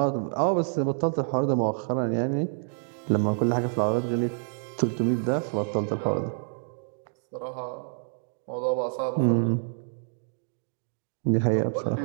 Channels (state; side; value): silent; left; digital silence